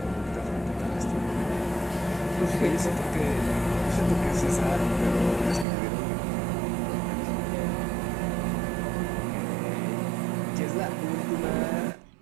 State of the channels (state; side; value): drops out; left; at 5.7 s